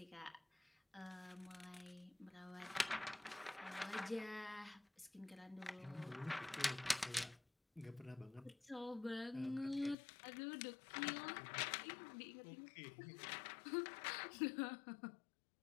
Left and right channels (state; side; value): drops out; right; at 10.0 s